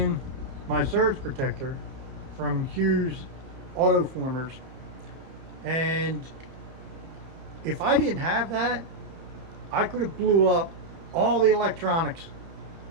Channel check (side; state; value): left; late; 30 ms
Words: my surge protector from Hughes auto formers, and if I didn't have that, I could have blew up all the electronics